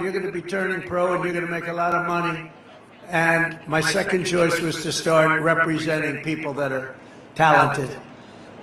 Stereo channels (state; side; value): identical; both; correlation 1.00